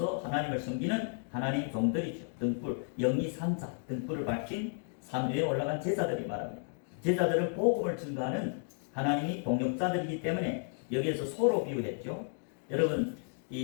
하나님을 섬기는 하나님 종들이죠. 등불, 영이 산자, 등불을 밝힌 산 위에 올라간 제자들이 말합니다. 제자들은 복음을 증거하는 하나님이 동역자들이기 때문에 여기에서 소로 비유했죠. 여러분,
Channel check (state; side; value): silent; right; 56 dB below the other